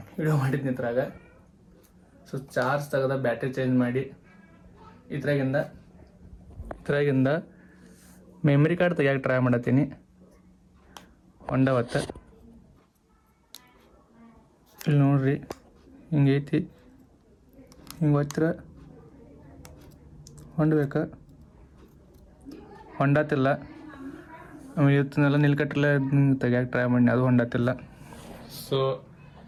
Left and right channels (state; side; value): identical; both; correlation 1.00